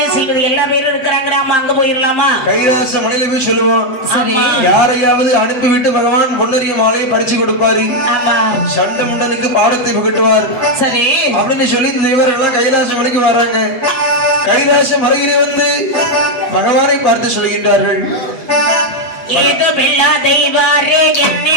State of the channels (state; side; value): late; right; 7.6 ms